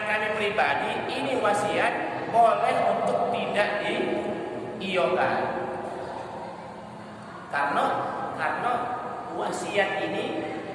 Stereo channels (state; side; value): identical; both; correlation 1.00